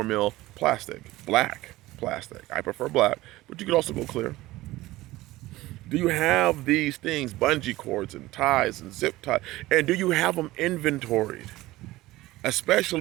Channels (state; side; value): quieter; left; 18.0 dB